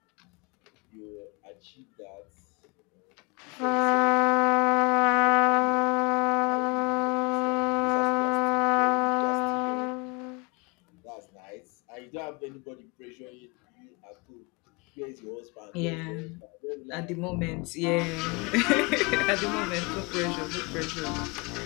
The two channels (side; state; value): right; quieter; 29.7 dB